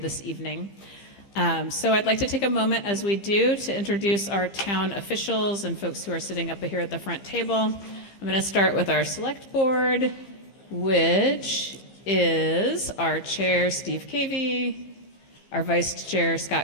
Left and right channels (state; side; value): late; right; 15 ms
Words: evening. So I'd like to take a moment, as we do, to introduce our town officials and folks who are sitting up here at the front table. I'm going to start with our select board, which is our chair, Steve Cavey, our vice chair,